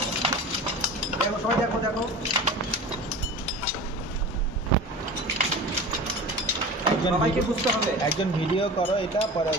দেখো সবাই দেখো সবাইকে বুঝতে হবে। একজন ভিডিও করো এটা, পরে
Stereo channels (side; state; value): both; normal; correlation 0.35